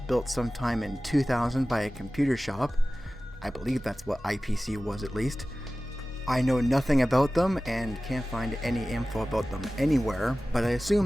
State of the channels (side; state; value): both; normal; correlation 0.96